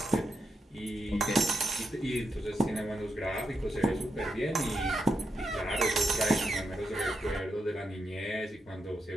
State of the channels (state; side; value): normal; both; correlation 0.85